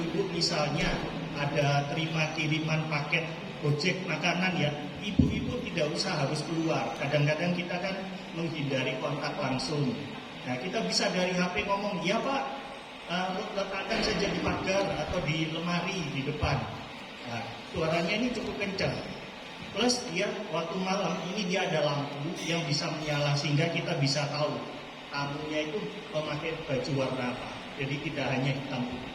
misalnya ada terima kiriman paket Gojek makanan ya, ibu-ibu tidak usah harus keluar. Kadang-kadang kita kan menghindari kontak langsung. Nah, kita bisa dari HP ngomong, ya Pak, letakkan saja di pagar atau di lemari di depan. Nah, suaranya ini cukup kencang. Plus dia waktu malam ini dia ada lampu yang bisa menyala sehingga kita bisa tahu tamunya itu memakai baju warna apa. Jadi tidak hanya hitam putih.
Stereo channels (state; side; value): identical; both; correlation 1.00